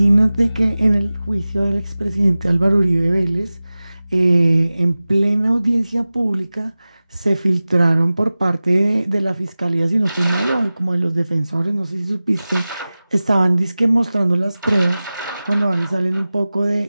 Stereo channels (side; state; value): both; inverted; correlation -0.97